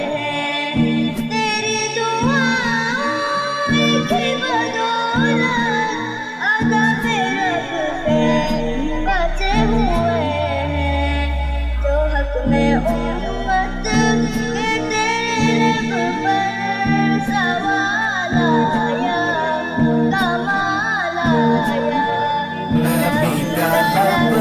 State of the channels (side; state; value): both; identical; correlation 1.00